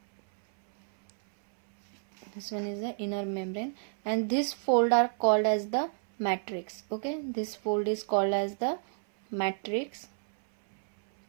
This one is the inner membrane, and this fold are called as the matrix. Okay, this fold is called as the matrix.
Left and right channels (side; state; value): left; silent; 58 dB below the other